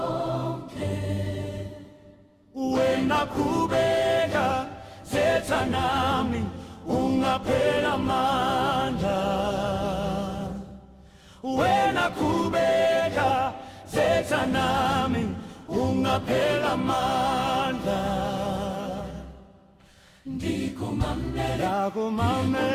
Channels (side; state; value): both; identical; correlation 1.00